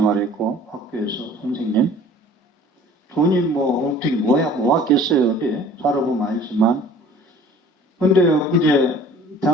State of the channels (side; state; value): both; normal; correlation 0.48